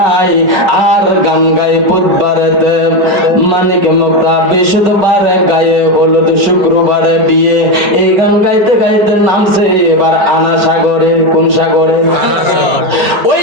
আর গান গায়ে বুধবারেতে মানিক মুক্তা, বৃহস্পতিবারে গায়ে হলুদ, শুক্রবারে বিয়ে। এই গান গাইতে গাইতে নামছে এবার আনা সাগরে। কোন সাগরে? ওই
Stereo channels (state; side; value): late; left; 5.3 ms